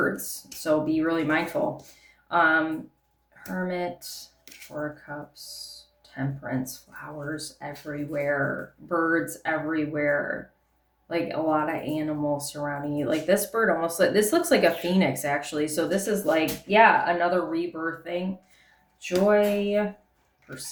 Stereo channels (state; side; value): identical; both; correlation 1.00